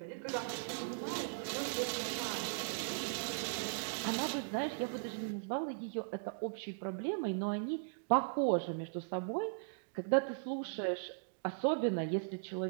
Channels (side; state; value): left; silent; digital silence